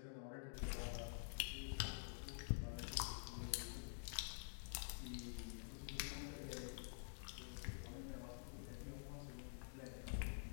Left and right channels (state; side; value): silent; right; digital silence